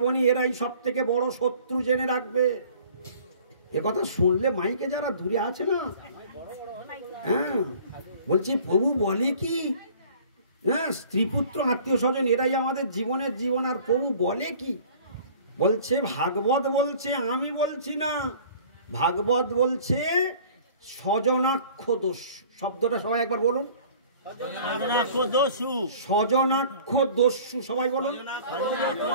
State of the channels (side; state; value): both; inverted; correlation -0.49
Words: এরাই সব থেকে বড় শত্রু, জেনে রাখবে। এ কথা শুনলে মাইকে যারা দূরে আছে না, হ্যাঁ, বলছি প্রভু বলে কি, হ্যাঁ, স্ত্রী পুত্র আত্মীয় স্বজন এরাই আমাদের জীবনের জীবন। আর প্রভু বলে কি? বলছে, ভাগবত বলছে, আমি বলছি না, ভাগবত বলছে স্বজনাক্ষ দোষ। শব্দটা সবাই একবার বলুন, স্বজনাক্ষ দস্যু। সবাই বলুন।